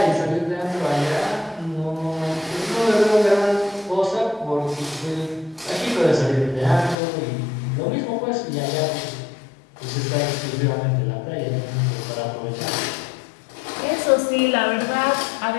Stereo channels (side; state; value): right; drops out; at 7.0 s